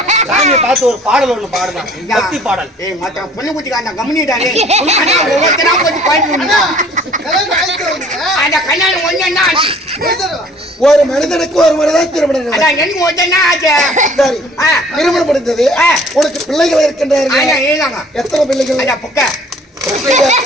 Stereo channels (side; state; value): both; normal; correlation 0.54